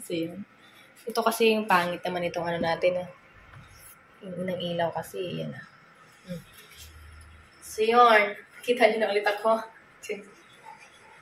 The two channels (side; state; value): both; identical; correlation 1.00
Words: yan. Ito kasi yung pangit naman itong ano natin. Yung unang ilaw kasi. Yan So, yun. Kita niyo na ulit ako.